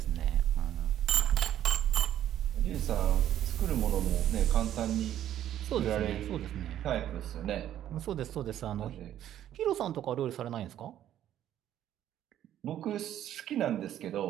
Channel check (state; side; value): quieter; left; 11.5 dB